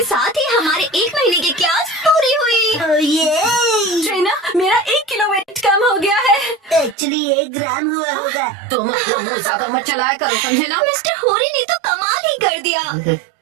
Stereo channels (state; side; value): drops out; left; at 7.0 s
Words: साथ ही हमारे 1 महीने की क्लास पूरी हुई। ओह ये, ट्रेना, मेरा 1 किलो वेट कम हो गया है। एक्चुअली 1 ग्राम हुआ होगा। तुम अपना मुंह ज्यादा मत चलाया करो, समझे ना? मिस्टर होरी ने तो कमाल ही कर दिया।